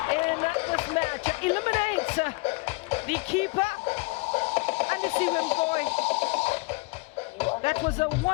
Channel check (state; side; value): quieter; right; 27.3 dB